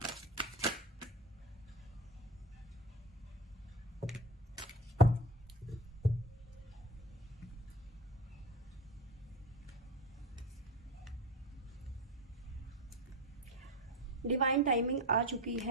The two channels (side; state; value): both; normal; correlation 0.26